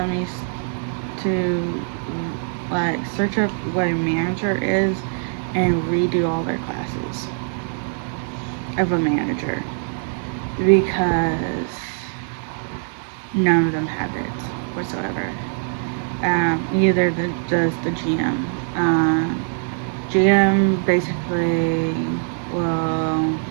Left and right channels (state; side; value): silent; left; 64 dB below the other